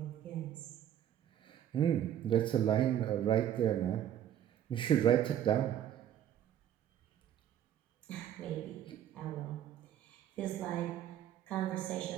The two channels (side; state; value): left; quieter; 10.6 dB